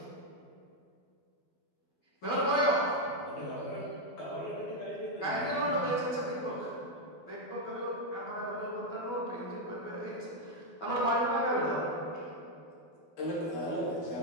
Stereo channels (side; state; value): right; late; 12 ms